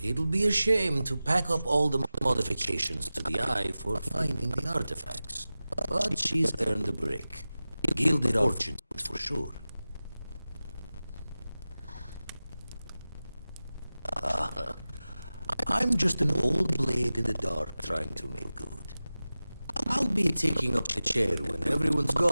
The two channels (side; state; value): both; inverted; correlation -0.96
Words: be a shame to pack up all the modifications to the Eye for finding the artifacts. But she's earned a break. Gilded fortune, for sure. I'm just an old blade in the dark trying to make good. I'll be taking up the chair when everyone's